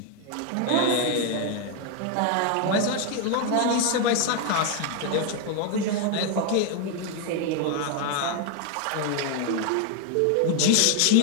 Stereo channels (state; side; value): different; both; correlation 0.01